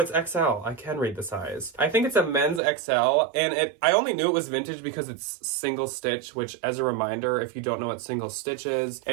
XL. I can read the size. I think it's a men's XL, and I only knew it was vintage because it's single stitch, which, as a reminder, if you don't know what single stitch is,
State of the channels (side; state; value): left; drops out; at 2.6 s